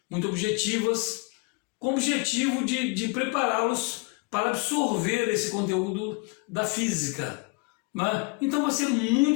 muito objetivas, com o objetivo de prepará-los para absorver esse conteúdo da física. Então vai ser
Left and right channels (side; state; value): right; quieter; 29.7 dB